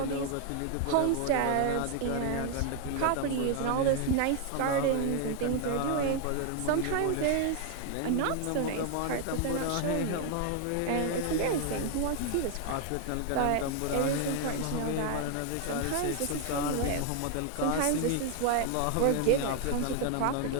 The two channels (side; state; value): both; different; correlation 0.00